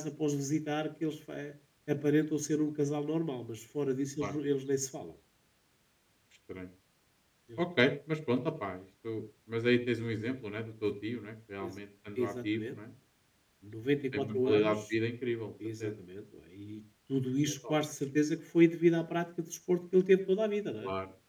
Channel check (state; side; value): identical; both; correlation 1.00